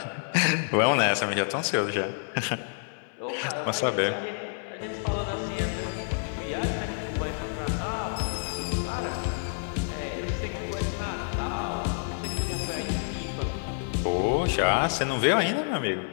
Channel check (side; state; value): right; silent; 58 dB below the other